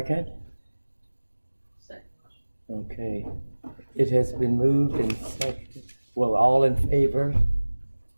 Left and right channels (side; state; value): both; inverted; correlation -1.00